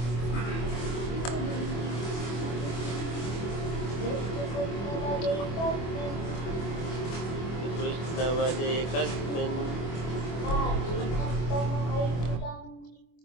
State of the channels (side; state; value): right; late; 25 ms